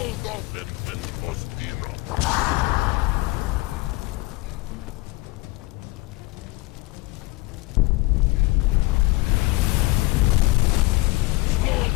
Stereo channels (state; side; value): quieter; right; 21.6 dB